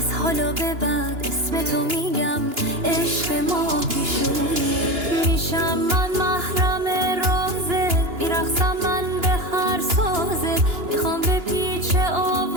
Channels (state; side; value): late; left; 2.9 ms